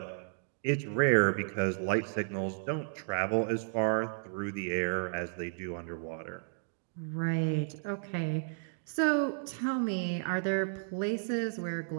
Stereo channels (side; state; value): left; silent; digital silence